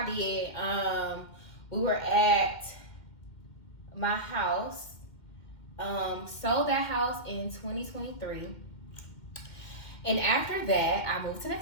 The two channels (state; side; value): late; right; 2.2 ms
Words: did, we were at my house. Sold that house in 2023. And after that, I moved to